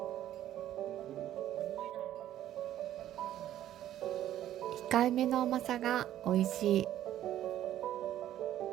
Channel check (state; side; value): quieter; left; 12.3 dB